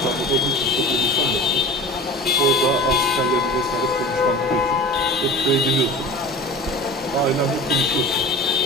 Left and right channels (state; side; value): normal; both; correlation 0.35